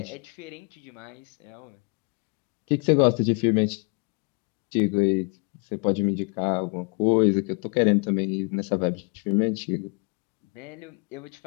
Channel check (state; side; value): quieter; right; 35.1 dB